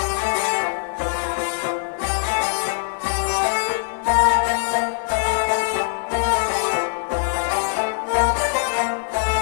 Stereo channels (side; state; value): right; silent; digital silence